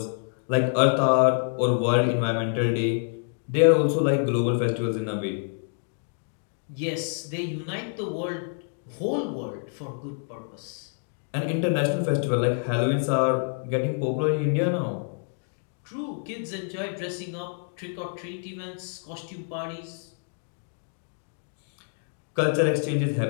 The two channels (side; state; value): right; silent; 60 dB below the other